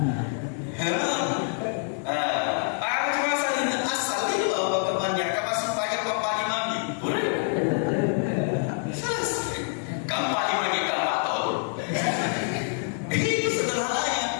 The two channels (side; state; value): right; silent; 61 dB below the other